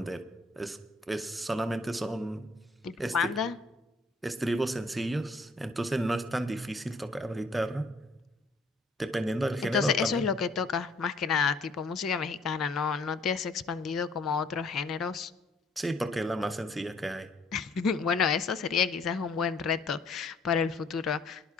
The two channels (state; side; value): quieter; right; 3.1 dB